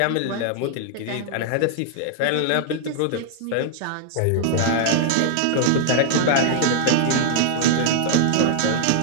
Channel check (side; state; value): both; different; correlation 0.00